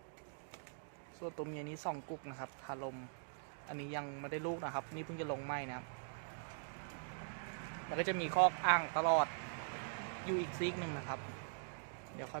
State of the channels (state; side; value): silent; left; digital silence